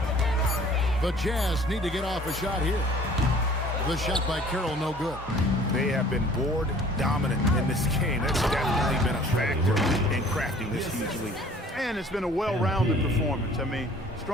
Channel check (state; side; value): normal; both; correlation 0.52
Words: The Jazz need to get off a shot here. The shot by Carroll, no good. They have been board dominant in this game. That's definitely been a factor in crafting this huge lead. And it's been a well-rounded performance. I mean,